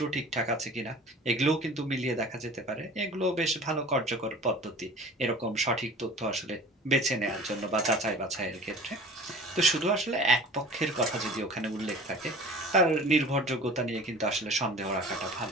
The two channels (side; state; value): both; normal; correlation 0.42